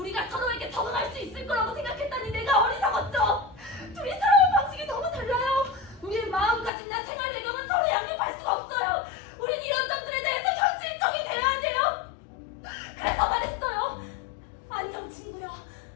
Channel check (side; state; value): right; drops out; at 6.7 s